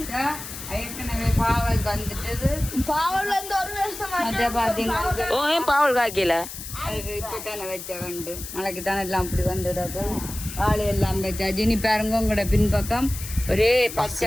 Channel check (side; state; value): left; noise; hiss, 10 dB below the sound